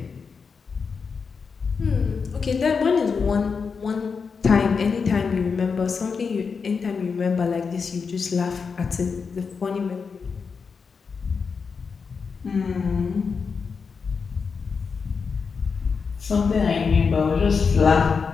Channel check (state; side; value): quieter; right; 5.4 dB